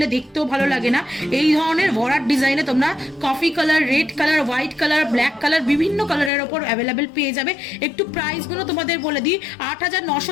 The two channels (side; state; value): right; drops out; at 6.3 s